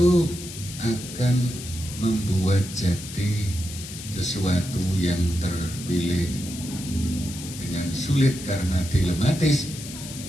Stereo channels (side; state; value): left; noise; hiss, 11 dB below the sound